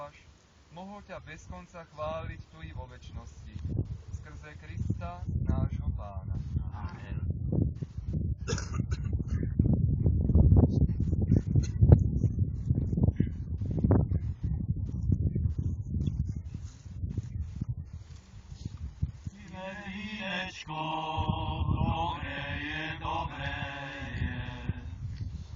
mohol ťa bez konca chváliť tu i vo večnosti. Skrze Krista, nášho Pána. Amen. Vínečko, dobré je,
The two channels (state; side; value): identical; both; correlation 1.00